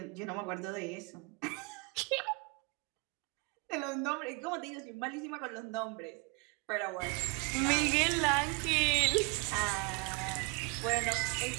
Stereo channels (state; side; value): quieter; left; 30.6 dB